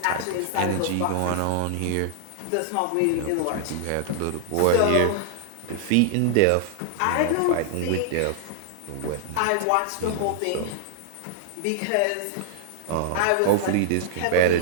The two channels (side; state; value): both; different; correlation -0.01